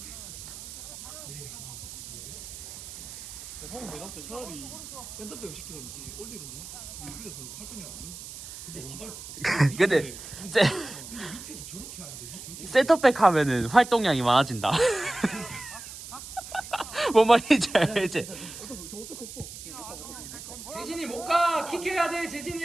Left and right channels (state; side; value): noise; right; hiss, 12 dB below the sound